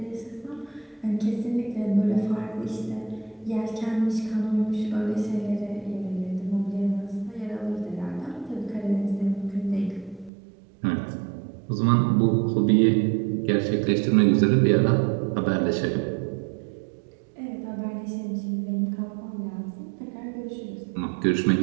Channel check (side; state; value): left; drops out; at 10.3 s